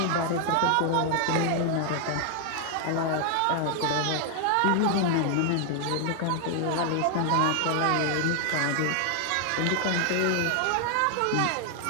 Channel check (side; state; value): both; different; correlation 0.00